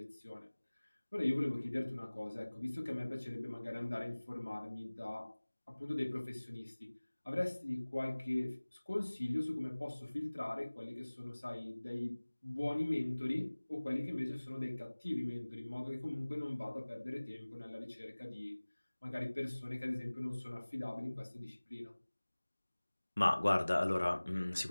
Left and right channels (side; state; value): both; inverted; correlation -1.00